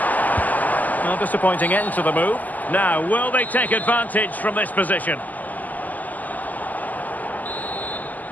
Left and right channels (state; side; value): late; right; 0.081 ms